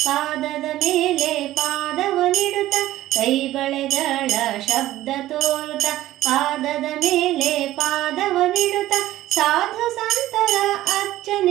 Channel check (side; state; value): left; quieter; 14.9 dB